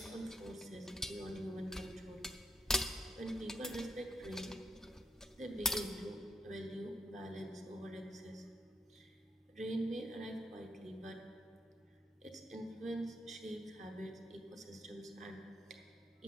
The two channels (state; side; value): normal; both; correlation 0.72